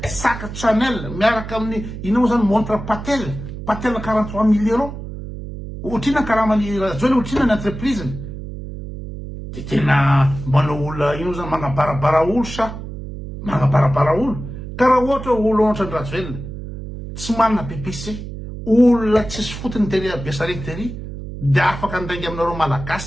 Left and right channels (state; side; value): noise; right; hum, 9 dB below the sound